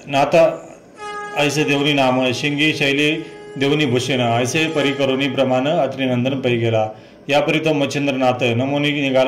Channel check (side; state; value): both; identical; correlation 1.00